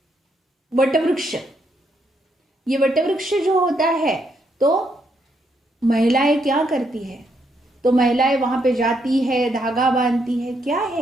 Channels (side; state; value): both; normal; correlation 0.76